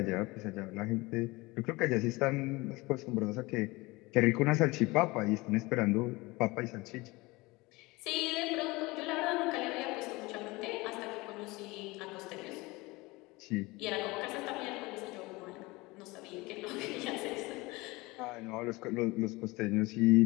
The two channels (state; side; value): quieter; right; 22.6 dB